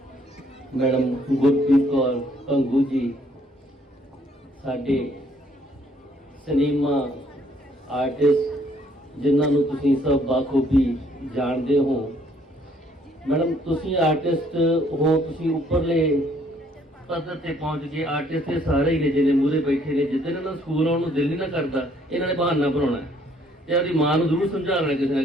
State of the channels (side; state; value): both; normal; correlation 0.64